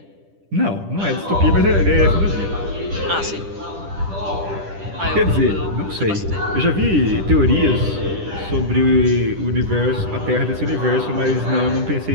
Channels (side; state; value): left; late; 10 ms